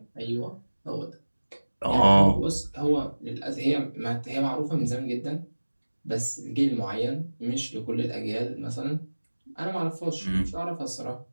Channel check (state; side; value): inverted; both; correlation -1.00